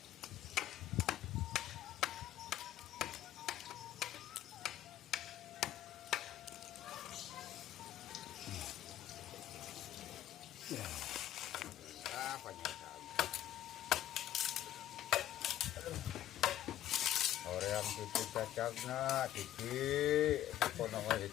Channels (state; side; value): quieter; right; 12.6 dB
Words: Ya. Banyak sekali. Orang tipu cacagna, tipi, apa namanya